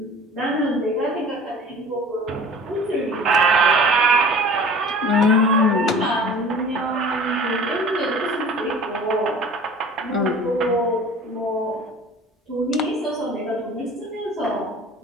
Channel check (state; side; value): normal; both; correlation 0.44